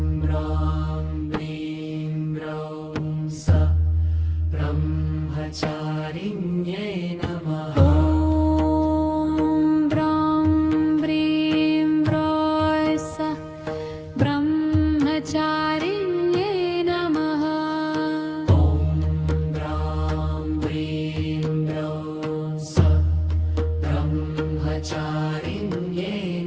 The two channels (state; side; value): identical; both; correlation 1.00